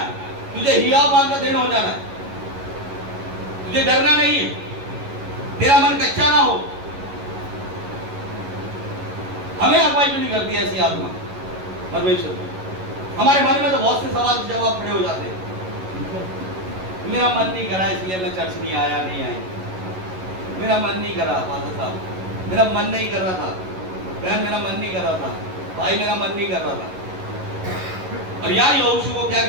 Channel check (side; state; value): left; late; 11 ms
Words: तुझे हियाव मान का दिन हो जाना है, तुझे डरना नहीं है, तेरा मन कच्चा ना हो। हमें अगुवाई क्यों नहीं करती ऐसी आत्मा परमेश्वर? हमारे मन में तो बहुत से सवाल जवाब खड़े हो जाते हैं। मेरा मन नहीं करा इसलिए मैं चर्च नहीं आया, नहीं आई। मेरा मन नहीं करा फादर साहब, मेरा मन नहीं कर रहा था बहन, मेरा मन नहीं कर रहा था भाई, मेरा मन नहीं कर रहा था। और यहाँ यहोशू को क्या